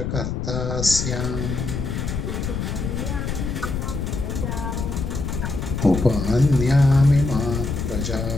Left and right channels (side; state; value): left; noise; rumble, 3 dB below the sound